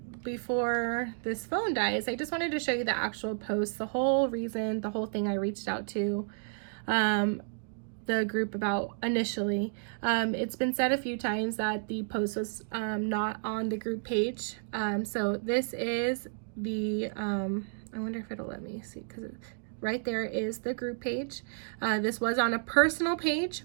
before this phone dies, I just wanted to show you the actual post, the whole reason, the whole thing I reached out to the group about initially. It's been said a few times that the post was not on the group page. So this is the, I wonder if it'll let me see, because right there is the group page. This was on a personal page,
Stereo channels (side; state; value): left; silent; digital silence